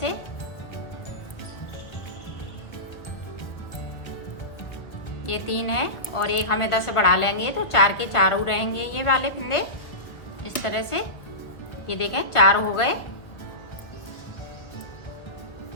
ये 3 है और एक हम इधर से बढ़ा लेंगे तो 4 के 4 रहेंगे ये वाले फिंदे। इस तरह से ये देखें, 4 हो गए।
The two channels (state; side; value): late; right; 1.1 ms